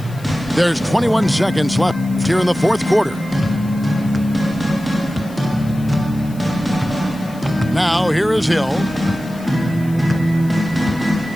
There's 21 seconds left here in the fourth quarter. Now here is Hill.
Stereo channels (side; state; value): left; noise; hiss, 23 dB below the sound